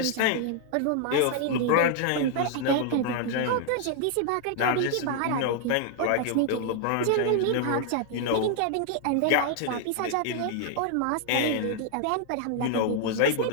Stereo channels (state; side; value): different; both; correlation -0.01